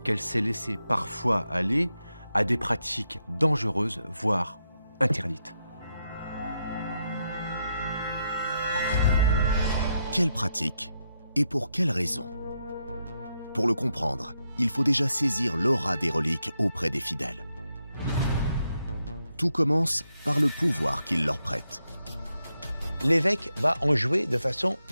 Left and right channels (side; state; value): both; inverted; correlation -0.82